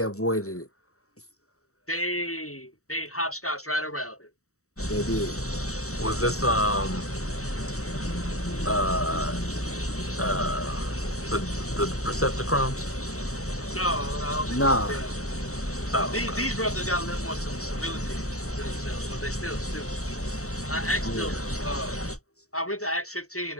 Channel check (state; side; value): late; right; 0.64 ms